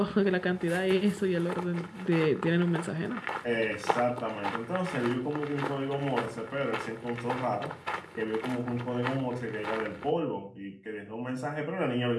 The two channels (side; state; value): both; identical; correlation 1.00